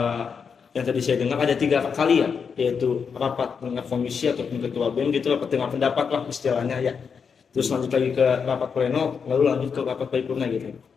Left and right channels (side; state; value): right; quieter; 6.2 dB